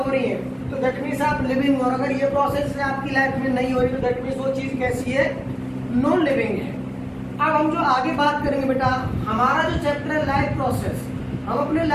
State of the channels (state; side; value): identical; both; correlation 1.00